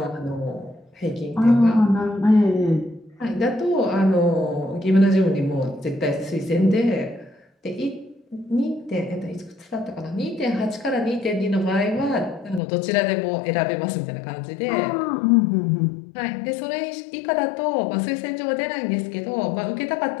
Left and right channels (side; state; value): right; drops out; at 12.6 s